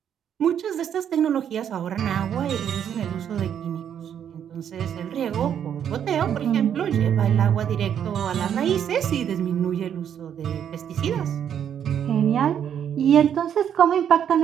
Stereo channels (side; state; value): left; quieter; 9.0 dB